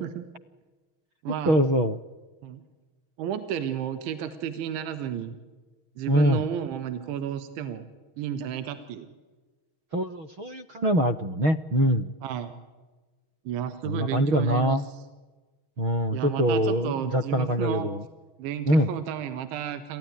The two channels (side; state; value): left; late; 6.4 ms